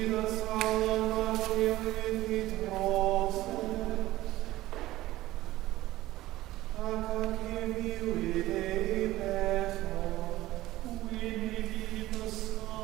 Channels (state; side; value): quieter; left; 16.5 dB